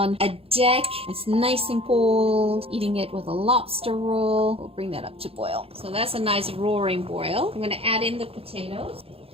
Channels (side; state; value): left; late; 0.28 ms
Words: a deck. It's nice and cold, eating it with a lobster roll. We'll bring that up to boil. So that's a nice roaring boil. I'm going to add in the potatoes.